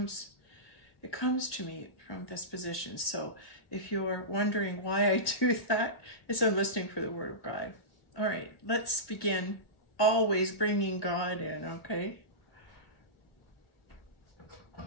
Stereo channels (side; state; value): right; late; 2.0 ms